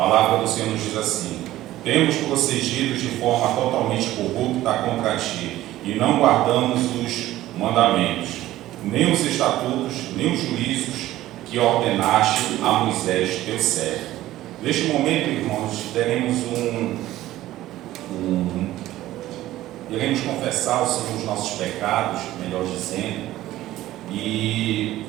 do Senhor nos diz assim: temos procedido de forma totalmente corrupta contra ti, e não guardamos os mandamentos, nem os estatutos, nem os juízos que ordenaste a Moisés, teu servo. Neste momento, irmãos, iremos confessar ao Senhor os nossos pecados, melhor dizendo, e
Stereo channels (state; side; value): quieter; left; 15.1 dB